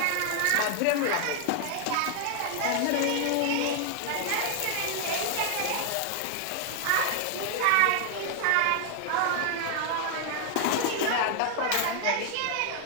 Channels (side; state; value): both; different; correlation 0.00